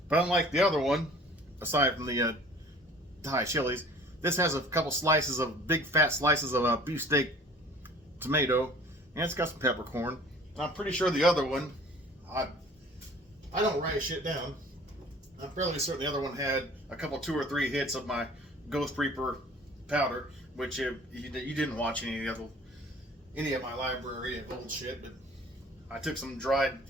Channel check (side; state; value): both; normal; correlation 0.49